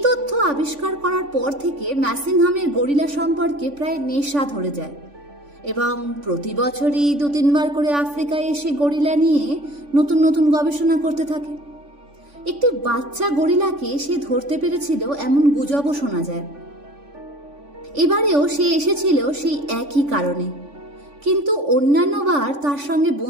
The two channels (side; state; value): left; late; 3.5 ms